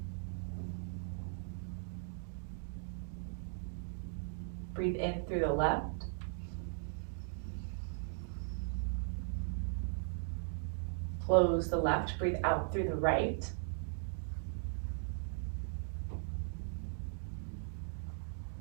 Breathe in through the left. Close the left, breathe out through the right.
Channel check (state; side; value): silent; left; digital silence